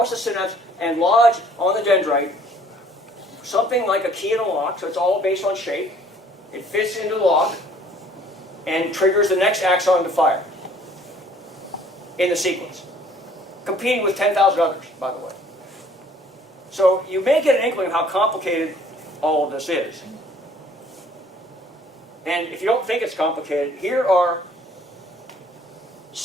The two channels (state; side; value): normal; both; correlation 0.56